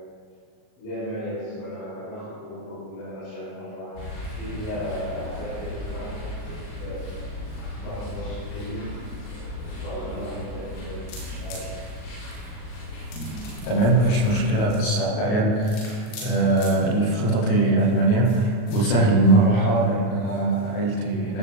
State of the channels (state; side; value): late; right; 38 ms